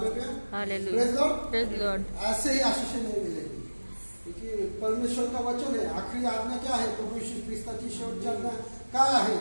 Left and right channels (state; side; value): inverted; both; correlation -1.00